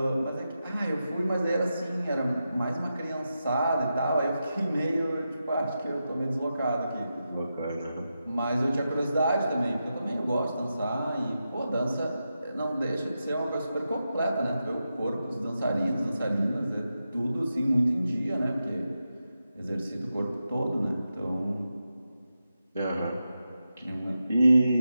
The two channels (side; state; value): both; inverted; correlation -0.89